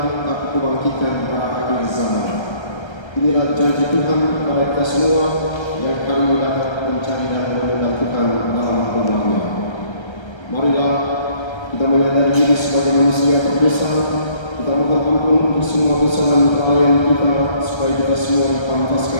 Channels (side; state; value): right; late; 1.3 ms